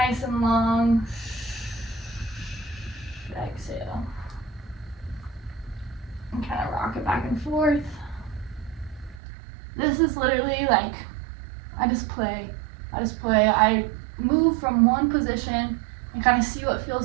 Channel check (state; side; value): drops out; left; at 9.2 s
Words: and long. Exhale. And kind of rock it back and forth. This is literally like, I just play. I move from one position and kind of see what